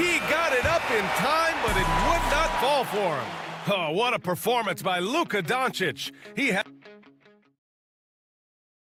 got it up in time, but it would not fall for him. Oh, what a performance by Luka Doncic. He had...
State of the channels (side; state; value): both; identical; correlation 1.00